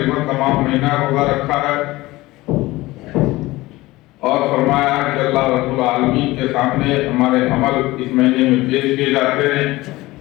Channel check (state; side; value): quieter; right; 19.3 dB